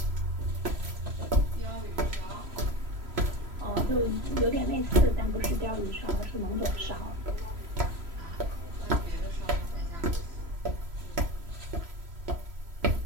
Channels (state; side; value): late; left; 3.0 ms